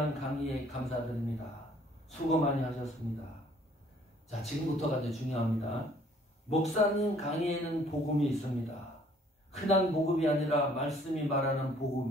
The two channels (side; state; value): both; normal; correlation 0.59